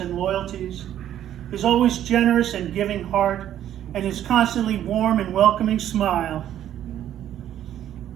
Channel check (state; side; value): quieter; left; 11.3 dB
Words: loyalties, his always generous and giving heart, and his constantly warm and welcoming smile,